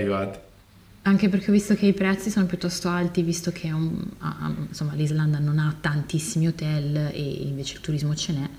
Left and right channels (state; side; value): identical; both; correlation 1.00